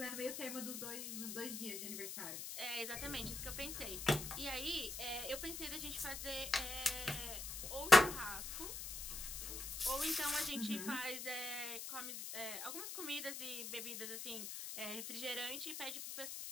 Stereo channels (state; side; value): noise; left; hiss, 6 dB below the sound